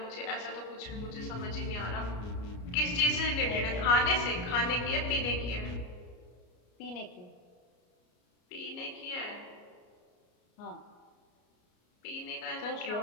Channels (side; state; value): right; late; 33 ms